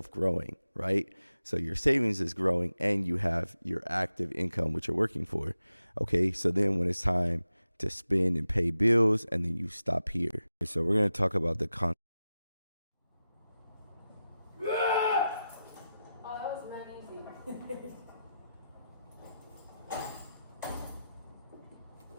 growing, right? So your savings is growing and you have your active income, which you're working for. Okay, so then when it's time to spend and pay bills, and then you stop here. So we're going to talk about the Oh, that was not easy.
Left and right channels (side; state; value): both; inverted; correlation -0.91